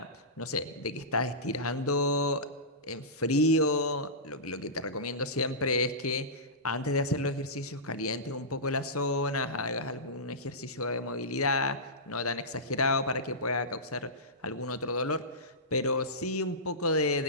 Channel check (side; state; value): both; normal; correlation -0.18